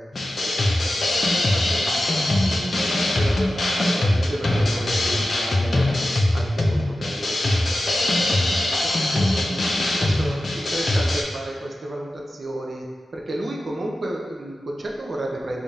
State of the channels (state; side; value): normal; both; correlation 0.93